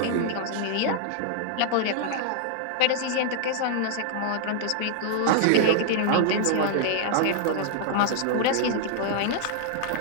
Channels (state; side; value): different; both; correlation -0.01